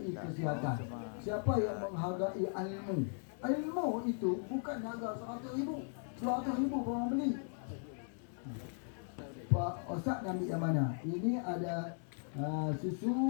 kesihatan, siapa yang menghargai ilmu. Ilmu itu bukan harga 100,000, 200,000 orang beli. Pak Ustaz nak ambil yang mana? Ini ada susu,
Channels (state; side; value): silent; right; 53 dB below the other